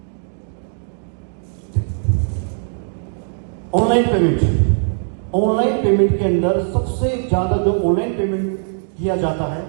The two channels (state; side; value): silent; left; digital silence